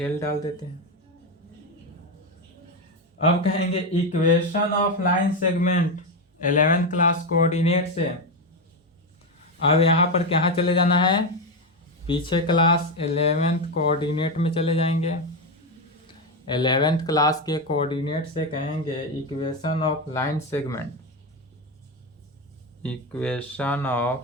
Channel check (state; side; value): normal; both; correlation 0.11